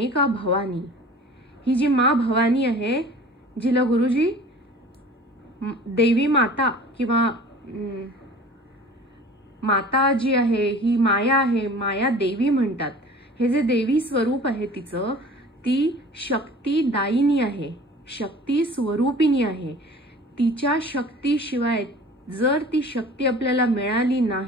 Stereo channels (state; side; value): normal; both; correlation 0.44